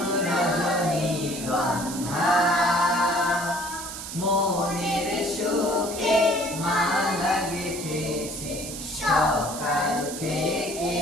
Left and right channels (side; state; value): right; noise; hiss, 9 dB below the sound